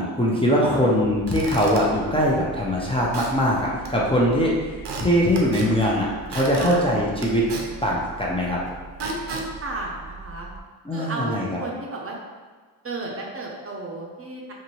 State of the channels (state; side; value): normal; both; correlation 0.36